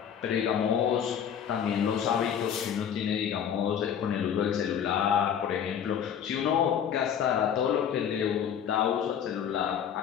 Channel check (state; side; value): quieter; right; 8.5 dB